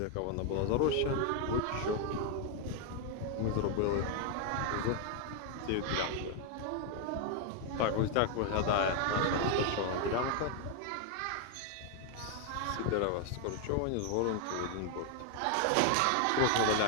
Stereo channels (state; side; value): different; both; correlation 0.01